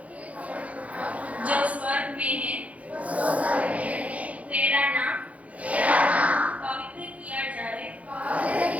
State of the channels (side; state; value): left; late; 0.067 ms